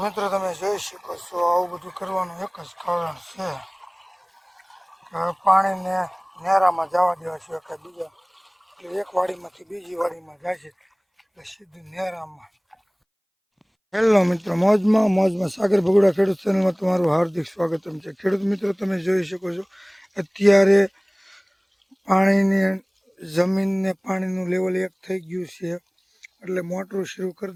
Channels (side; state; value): both; identical; correlation 1.00